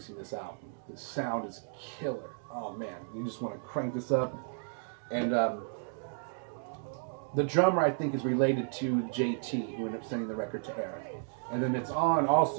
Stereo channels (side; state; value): left; silent; digital silence